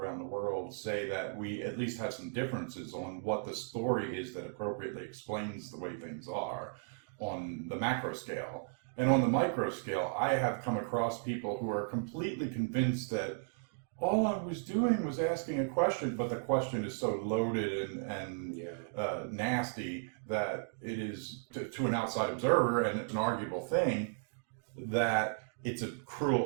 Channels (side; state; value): left; silent; digital silence